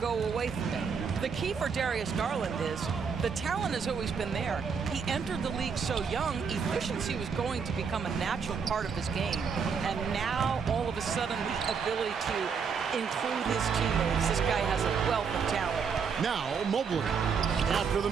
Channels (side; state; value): left; quieter; 6.1 dB